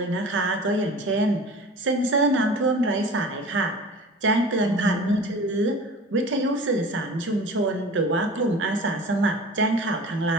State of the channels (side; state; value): both; normal; correlation 0.40